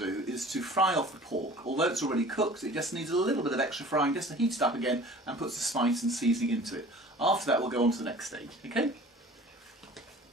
is to fry off the pork. Although it's already cooked, it just needs a little bit of extra frying just to heat it up again and put the spice and seasoning into it. After that we'll go on to the next stage, okay?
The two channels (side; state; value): both; normal; correlation 0.45